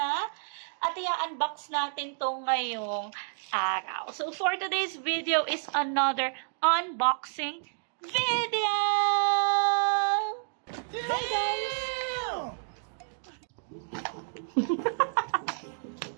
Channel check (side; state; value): left; silent; digital silence